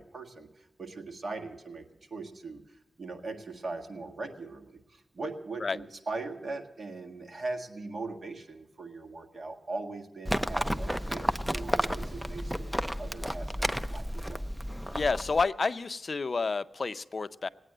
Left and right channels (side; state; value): both; normal; correlation 0.94